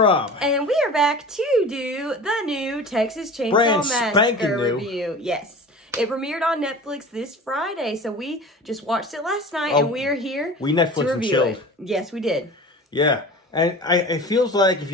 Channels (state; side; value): normal; both; correlation 0.37